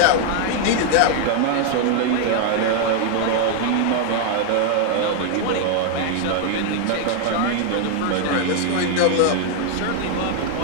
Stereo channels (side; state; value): both; different; correlation 0.00